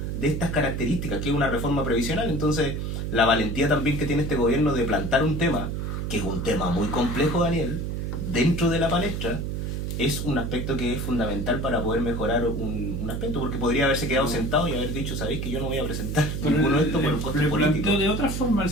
de estas características, que es una reforma previsional. Entonces, la valentía también que tiene este gobierno de plantar un tema, que es un tema muy complejo, Daniel, dentro de la palestra, es un aspecto que es fundamental para poder mejorar un aspecto, porque podría haberse quedado sentado y haber dicho, sabéis que yo no voy a presentar ninguno de estos por un coste político. Pero de otra forma el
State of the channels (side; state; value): right; noise; hum, 3 dB below the sound